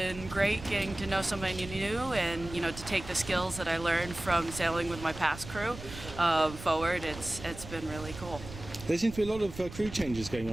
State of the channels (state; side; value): noise; right; rumble, 13 dB below the sound